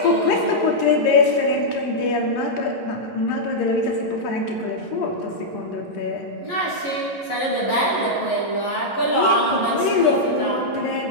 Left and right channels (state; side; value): late; right; 11 ms